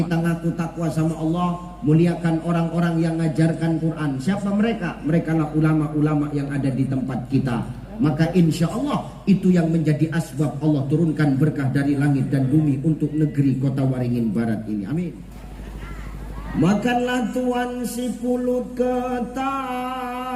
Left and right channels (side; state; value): both; identical; correlation 1.00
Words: ngaku takwa sama Allah, muliakan orang-orang yang ngajarkan Quran. Siapa mereka? Mereka lah ulama-ulama yang ada di tempat kita. Maka insya Allah itu yang menjadi asbab Allah turunkan berkah dari langit dan bumi untuk negeri Kota Waringin Barat ini. Amin. Makanlah tuan si pulut ketan.